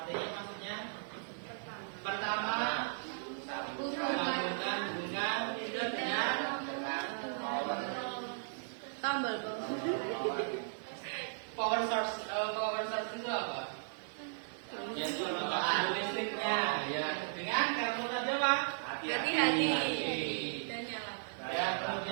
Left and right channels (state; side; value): silent; left; digital silence